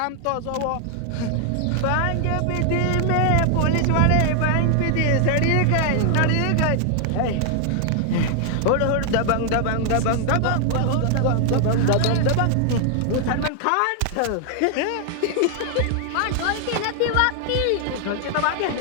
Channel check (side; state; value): both; different; correlation 0.00